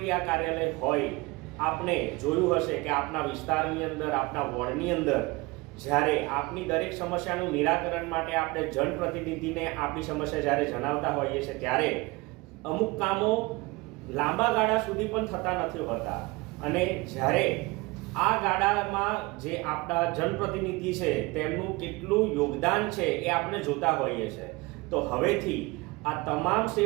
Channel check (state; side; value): quieter; left; 23.7 dB